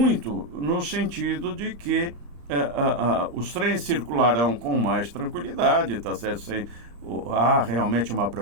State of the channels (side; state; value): left; late; 34 ms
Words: no sentido de que os trens circularão com mais tranquilidade, tá certo? Sem há realmente uma